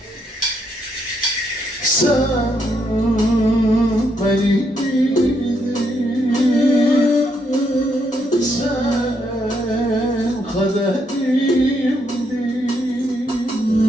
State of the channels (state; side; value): normal; both; correlation 0.76